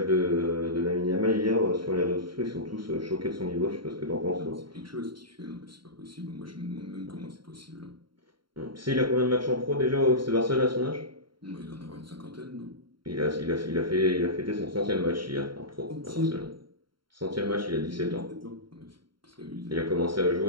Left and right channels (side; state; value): left; late; 0.73 ms